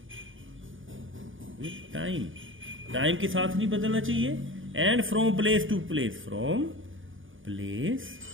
time के साथ नहीं बदलना चाहिए। And from place to place, from place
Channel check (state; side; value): late; left; 0.57 ms